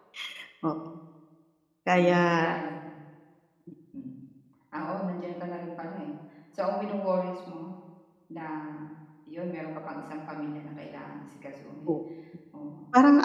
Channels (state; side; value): identical; both; correlation 1.00